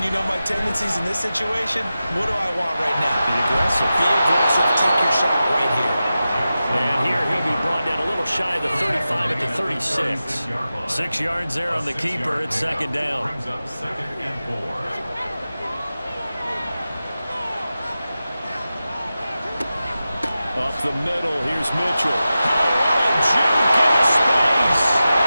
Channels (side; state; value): both; inverted; correlation -0.93